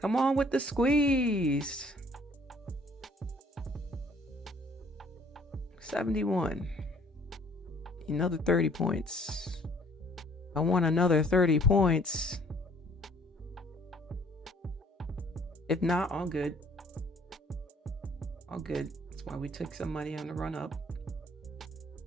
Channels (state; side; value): normal; both; correlation 0.59